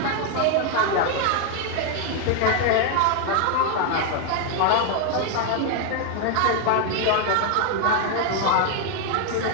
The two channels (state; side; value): different; both; correlation 0.00